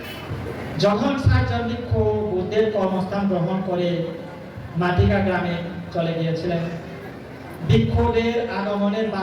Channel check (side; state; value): both; identical; correlation 1.00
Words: যখন ৬০ জন ভিক্ষু বুদ্ধের কর্মস্থান গ্রহণ করে মাটিকা গ্রামে চলে গিয়েছিলেন, ভিক্ষুদের আগমনের